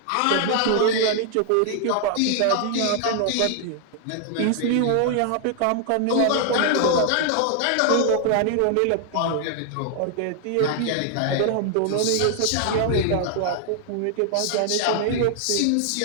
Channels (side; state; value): both; different; correlation 0.00